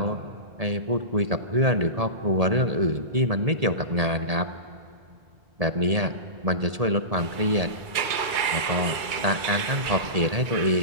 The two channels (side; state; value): left; late; 2.3 ms